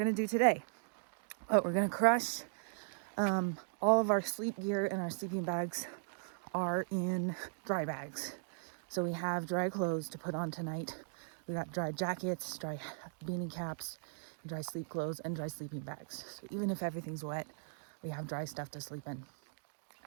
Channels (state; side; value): silent; left; digital silence